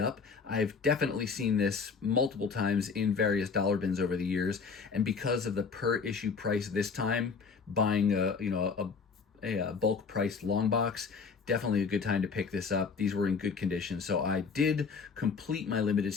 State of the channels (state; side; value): quieter; right; 5.3 dB